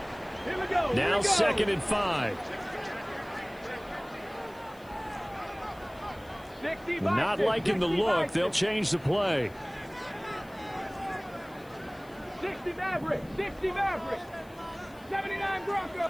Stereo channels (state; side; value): noise; left; hiss, 26 dB below the sound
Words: Now 2nd and 5. Not liking the look. They'll change the play. 60 Maverick, 60 Maverick, 79